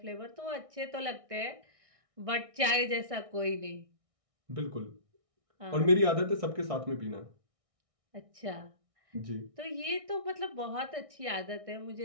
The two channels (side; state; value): left; late; 1.6 ms